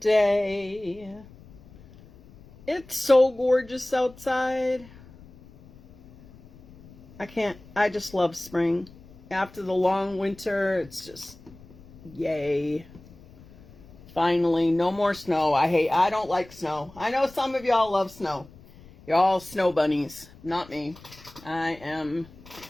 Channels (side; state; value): left; noise; rumble, 22 dB below the sound